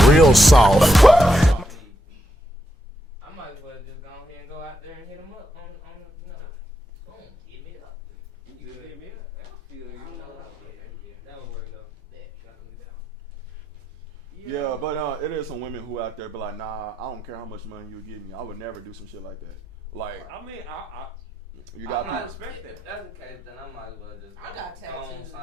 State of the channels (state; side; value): normal; both; correlation 0.83